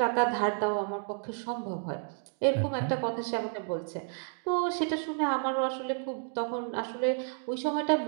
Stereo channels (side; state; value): left; silent; 55 dB below the other